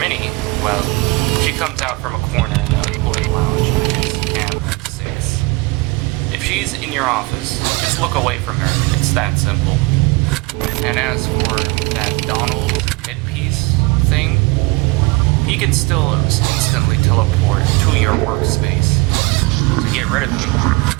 well, she comes out from a corner in the employee lounge, which is cam 6. If she's in your office, just look away from her. It's that simple. And as for that Donald headpiece thing, he can still instantly teleport to your workspace. To get rid of him,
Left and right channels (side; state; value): left; quieter; 24.8 dB